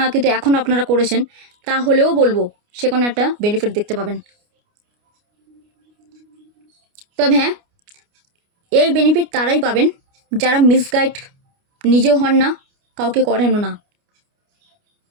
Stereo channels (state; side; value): late; left; 29 ms